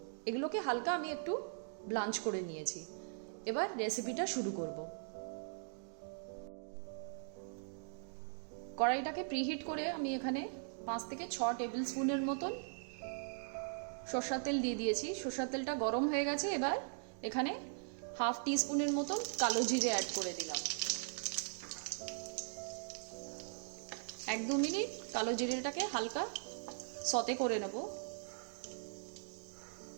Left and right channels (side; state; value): left; silent; digital silence